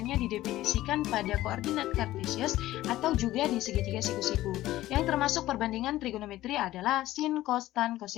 didefinisikan pada koordinat kartesius atau juga di segitiga siku-siku. Yang termasuk perbandingan trigonometri adalah sin, cos, tan,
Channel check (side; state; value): right; quieter; 15.5 dB